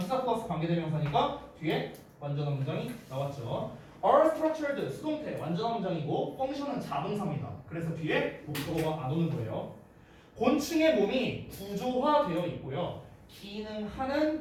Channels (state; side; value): identical; both; correlation 1.00